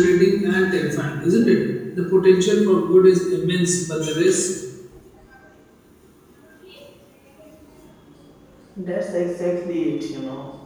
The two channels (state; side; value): identical; both; correlation 1.00